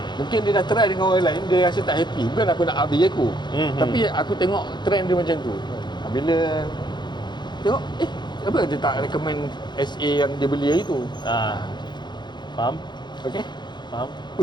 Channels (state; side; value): late; right; 0.21 ms